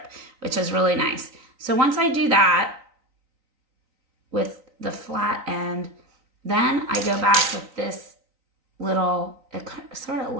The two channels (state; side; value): late; left; 3.9 ms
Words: which is really nice. So once I do that with the flat end, then I go back with this little, it sort of